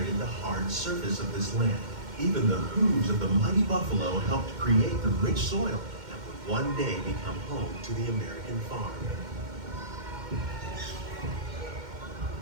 the hard surface of this land. Even the hooves of the mighty buffalo helped create the rich soil that would one day become home to the American farm.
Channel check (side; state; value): left; late; 2.1 ms